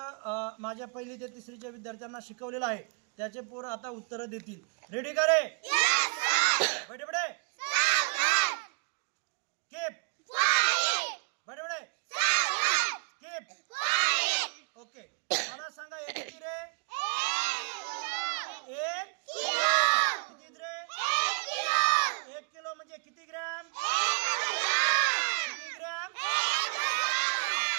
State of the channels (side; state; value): left; quieter; 34.7 dB